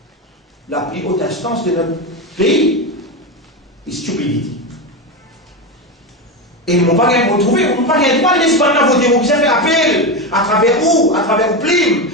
La plus haute instance de notre pays is stupidity. Et ils n'ont pas retrouvé, ils n'ont pas le droit de laisser voter. Vous pouvez faire appel à travers où? À travers Plim.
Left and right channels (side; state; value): both; normal; correlation 0.16